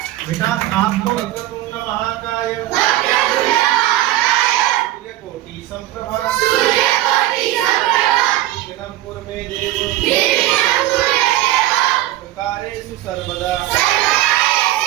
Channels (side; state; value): left; quieter; 15.0 dB